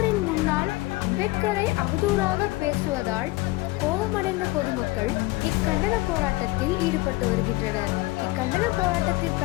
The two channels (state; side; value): quieter; right; 21.2 dB